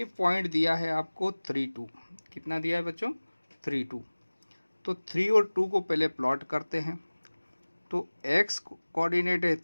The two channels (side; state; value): both; inverted; correlation -1.00